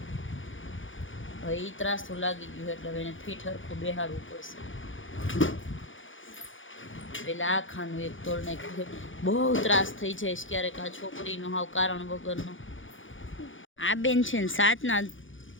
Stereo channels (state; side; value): late; right; 0.57 ms